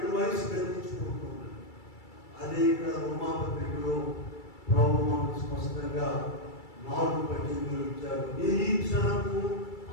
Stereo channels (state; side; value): late; right; 2.3 ms